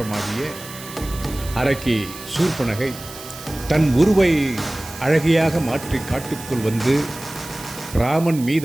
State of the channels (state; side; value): noise; right; hiss, 14 dB below the sound